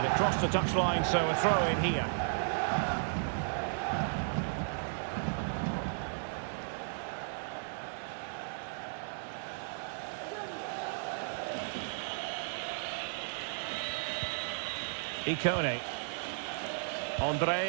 it crossed the touchline, so a throw in here. Icone.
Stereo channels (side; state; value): left; silent; digital silence